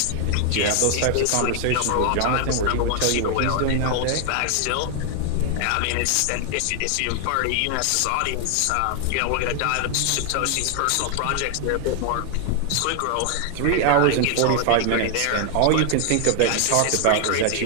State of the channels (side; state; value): both; different; correlation 0.00